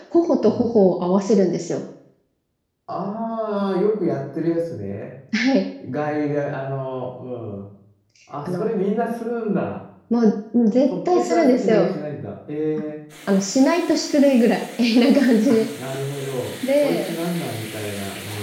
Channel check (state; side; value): identical; both; correlation 1.00